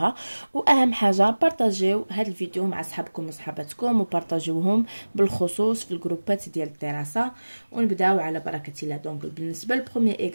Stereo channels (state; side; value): inverted; both; correlation -1.00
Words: واهم حاجه بارطاجيو هذا الفيديو مع صحابكم وصحاباتكم، وبارطاجيوهم بالخصوص في الجروبات ديال الدراسه. ونبداو على بركه الله. دونك بالنسبه للبروميير